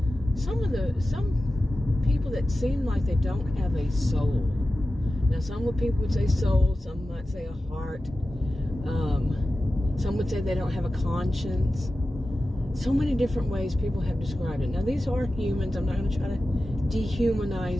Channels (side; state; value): both; normal; correlation 0.94